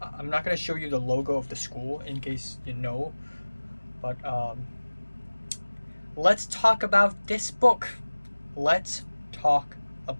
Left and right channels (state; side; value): inverted; both; correlation -1.00